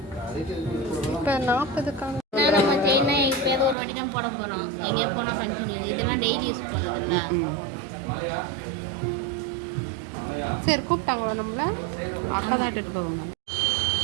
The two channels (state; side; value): drops out; left; at 3.8 s